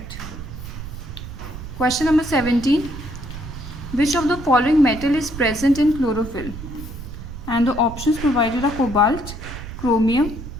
Question number 17. Which of the following metal is present in chlorophyll? And the options provided are cobalt, chromium,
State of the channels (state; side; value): noise; right; rumble, 10 dB below the sound